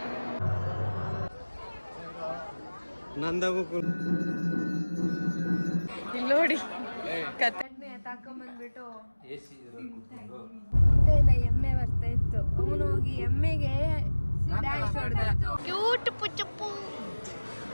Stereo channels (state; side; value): inverted; both; correlation -1.00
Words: ನಂದಾಗೂ ಇಲ್ಲಿ ನೋಡಿ ಕತೆ ತಾಕೊಂಬಂದ್ಬಿಟ್ಟು ಮುಂದೆಯಿಂದ ಎಮ್ಮೆ ಬರ್ತಾ ಇತ್ತು. ಅವನು ಹೋಗಿ ಎಮ್ಮೆಗೆ ಡ್ಯಾನ್ಸ್ ಹೊಡೆದ. ಕ್ಯೂಟ್ ಪುಚ್ಚಪ್ಪು.